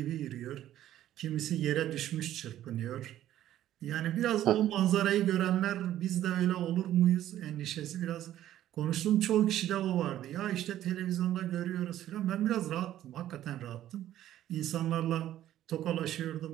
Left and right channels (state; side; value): quieter; left; 12.6 dB